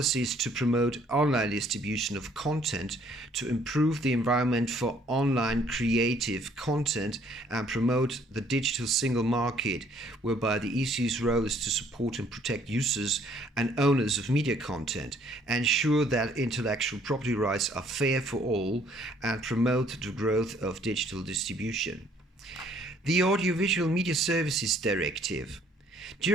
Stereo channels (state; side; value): normal; both; correlation 0.62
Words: to promote online distribution of content to improve the environment for online creative content and promote the digital single market, whereby the EC's role is to support and protect users and owners of media content, ensure that intellectual property rights are fair for all, and promote the growth of digital distribution. The Audiovisual Media Services Directive.